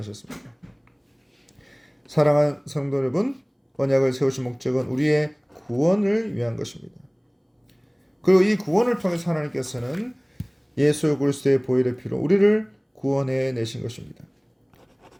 사랑하는 성도 여러분, 언약을 세우신 목적은 우리의 구원을 위한 것입니다. 그리고 이 구원을 통해서 하나님께서는 예수 그리스도의 보혈의 피로 우리를 구원해 내신 것입니다.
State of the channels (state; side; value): identical; both; correlation 1.00